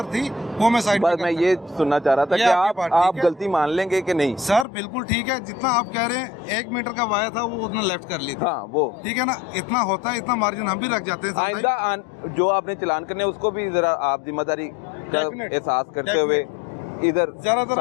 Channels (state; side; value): drops out; right; at 4.7 s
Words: थी, वो मैं साइड बस मैं ये सुनना चाह रहा था कि आप गलती मान लेंगे कि नहीं। सर बिल्कुल ठीक है, जितना आप कह रहे हैं 1 मीटर का वाया था वो उतना लेफ्ट कर ली थी। हाँ वो ठीक है ना, इतना होता है, इतना मार्जिन हम भी रख जाते हैं। आइंदा जो आपने चलान करने उसको भी जरा आप जिम्मेदारी का एहसास करते हुए इधर ज्यादातर